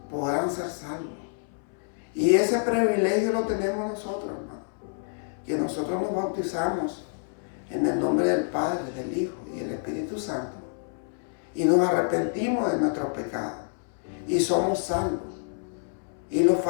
podrán ser salvos? Y ese privilegio lo tenemos nosotros, hermano, que nosotros nos bautizamos en el nombre del Padre, del Hijo y del Espíritu Santo, y nos arrepentimos de nuestros pecados y somos salvos. Y los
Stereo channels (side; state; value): right; silent; 60 dB below the other